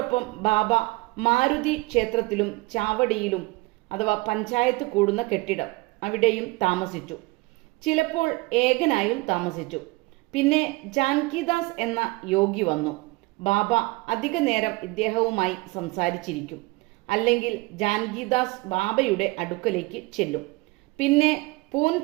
ബാബ മാരുതി ക്ഷേത്രത്തിലും ചാവടിയിലും അഥവാ പഞ്ചായത്ത് കൂടുന്ന കെട്ടിടം അവിടെയും താമസിച്ചു. ചിലപ്പോൾ ഏകനായും താമസിച്ചു. പിന്നെ ജാൻകിദാസ് എന്ന യോഗി വന്നു. ബാബ അധിക നേരം ഇദ്ദേഹവുമായി സംസാരിച്ചിരിക്കും. അല്ലെങ്കിൽ ജാൻകിദാസ് ബാബയുടെ അടുക്കലേക്ക് ചെല്ലും. പിന്നെ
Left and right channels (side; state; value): left; quieter; 23.8 dB